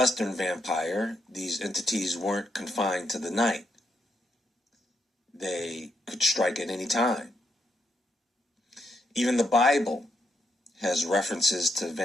vampire, these entities weren't confined to the night. They could strike at any time. Even the Bible has references to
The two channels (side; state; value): both; normal; correlation 0.79